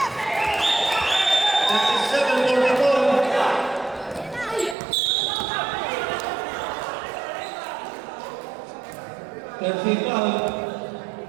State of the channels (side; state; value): left; drops out; at 4.8 s